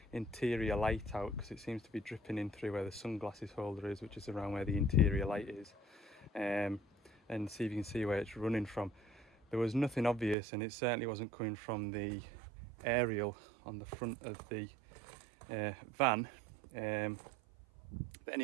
interior light out, because it seems to be dripping in through where the sunglasses holder is, which is around where the interior light is, and see if you can see where it's running from. There was nothing obvious, and it certainly wasn't coming from the aerial on the front of the van. But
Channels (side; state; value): left; drops out; at 10.4 s